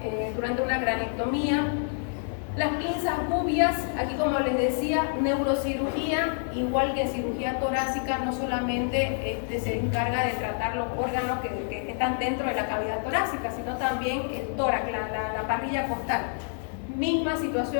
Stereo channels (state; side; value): silent; right; 60 dB below the other